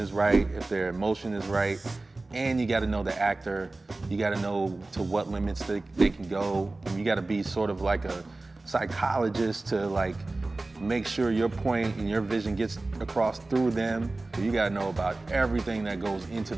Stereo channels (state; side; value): quieter; left; 3.1 dB